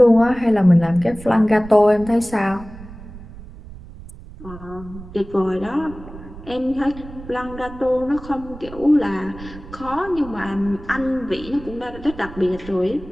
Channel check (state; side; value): noise; right; rumble, 16 dB below the sound